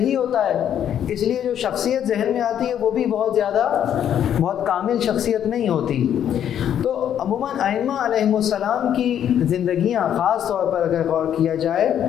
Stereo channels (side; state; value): right; quieter; 9.8 dB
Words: ہوتا ہے اس لیے جو شخصیت ذہن میں آتی ہے وہ بھی بہت کامل شخصیت نہیں ہوتی۔ تو عموماً ائمہ علیہم السلام کی زندگیاں خاص طور پر اگر غور کیا جائے